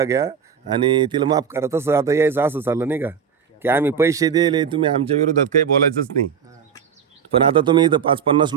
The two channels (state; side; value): quieter; left; 7.3 dB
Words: घ्या आणि तिला माफ करा. तसं आता यायचं असं चाललं नाही का की आम्ही पैसे दिले तुम्ही आमच्या विरोधात काही बोलायचंच नाही. पण आता तुम्ही इथं 5-50